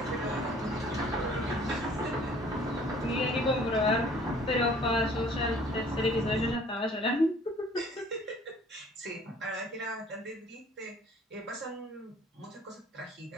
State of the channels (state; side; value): normal; both; correlation 0.54